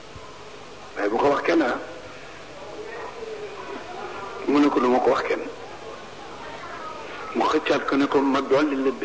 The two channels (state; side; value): identical; both; correlation 1.00